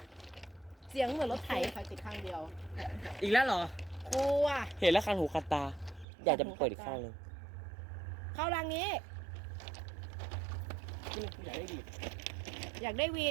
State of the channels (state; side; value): drops out; left; at 6.1 s